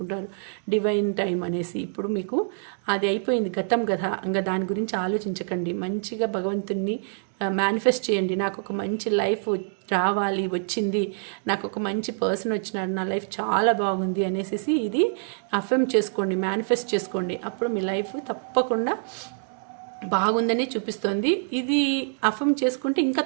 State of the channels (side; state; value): left; silent; digital silence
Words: డివైన్ టైం అనేసి ఇప్పుడు మీకు అది అయిపోయింది, గతం కదా. ఇంకా దాని గురించి ఆలోచించకండి. మంచిగా భగవంతుని మేనిఫెస్ట్ చేయండి. నాకు ఒక మంచి లైఫ్ రావాలి, వచ్చింది, నాకు ఒక మంచి పర్సన్ వచ్చినాడు, నా లైఫ్ చాలా బాగుంది అనేసి ఇది అఫర్మ్ చేసుకోండి, మేనిఫెస్ట్ చేసుకోండి. అప్పుడు మీ లైఫ్ తప్పకుండా బాగుందని చూపిస్తుంది. ఇది అఫర్మ్ చేసుకుంటే ఇంకా